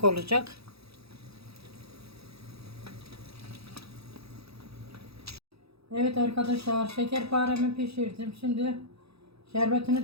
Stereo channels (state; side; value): late; left; 0.77 ms